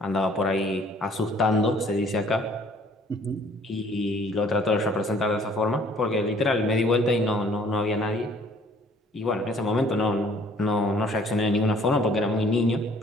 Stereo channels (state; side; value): normal; both; correlation 0.57